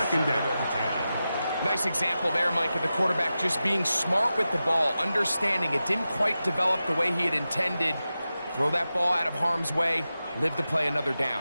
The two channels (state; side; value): inverted; both; correlation -0.92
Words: down. Nice example there, Mike, of the quarterback just being smart with the ball, understanding it didn't quite develop the way he had intended. Throw that ball out of harm's way, live to play another